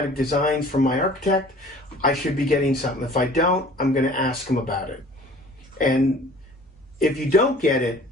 designs from my architect. I should be getting something. If I don't, I'm going to ask him about it. And if you don't get it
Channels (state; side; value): normal; both; correlation 0.48